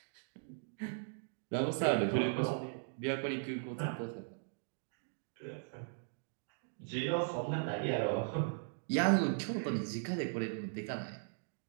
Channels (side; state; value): left; silent; digital silence